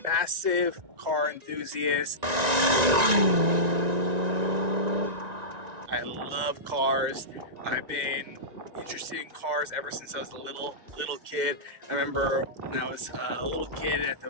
massive car enthusiast. I love cars. I've been interested in cars ever since I was a little kid. I remember when I was a little kid at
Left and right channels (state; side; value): late; left; 1.9 ms